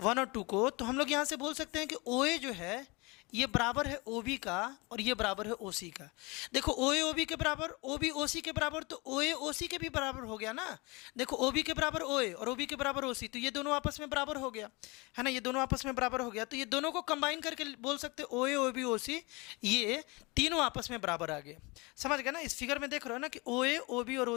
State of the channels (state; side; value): quieter; right; 26.3 dB